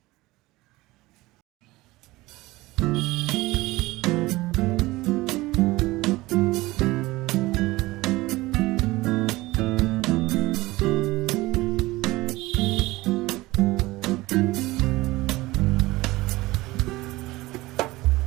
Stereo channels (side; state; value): left; quieter; 19.7 dB